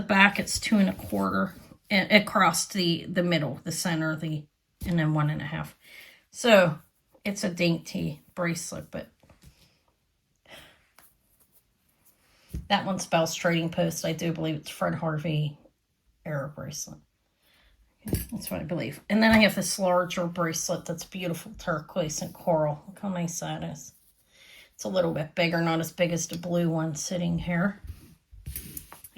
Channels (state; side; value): identical; both; correlation 1.00